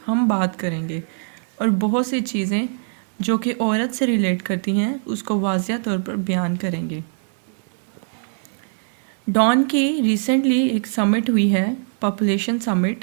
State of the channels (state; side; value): silent; left; digital silence